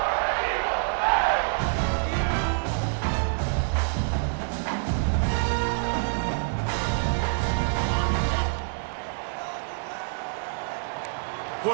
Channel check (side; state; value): left; silent; digital silence